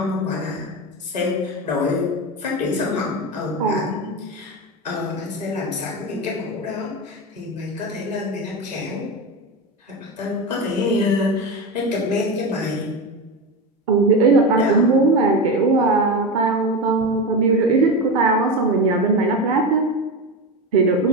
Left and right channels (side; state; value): both; normal; correlation 0.19